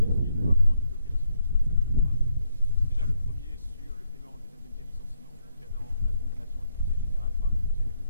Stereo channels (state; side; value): inverted; both; correlation -0.74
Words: de voir comment débloquer la situation sur deux points. Déjà, le premier sur le paiement des indemnités de licenciement concernant la condamnation du Conseil général par le Conseil des